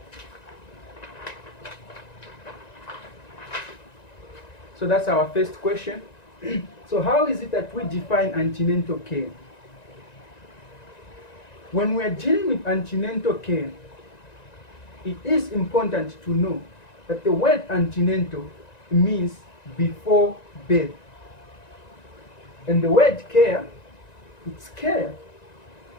So that's our first question. So how is it that we define antenatal care? When we are dealing with antenatal care, it is important to know that the word antenatal means before birth. And the word care, it's care.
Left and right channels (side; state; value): right; late; 1.9 ms